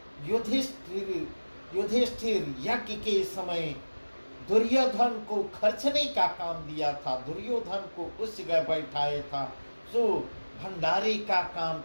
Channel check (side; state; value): both; inverted; correlation -1.00